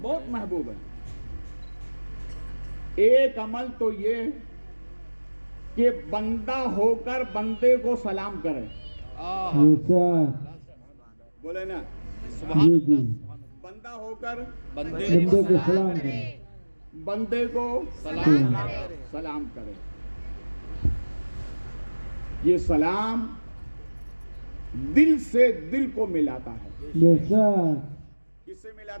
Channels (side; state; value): both; inverted; correlation -1.00